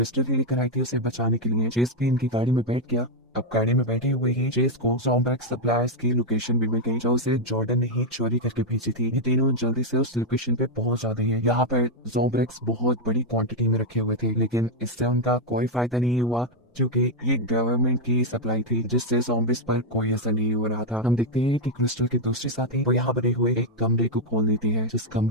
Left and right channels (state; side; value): normal; both; correlation 0.00